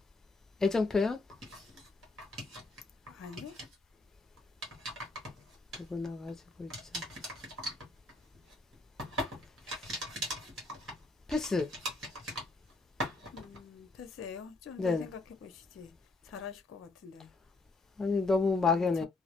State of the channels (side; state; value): right; quieter; 3.3 dB